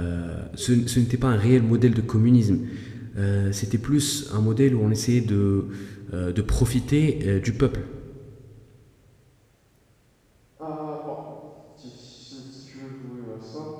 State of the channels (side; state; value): both; identical; correlation 1.00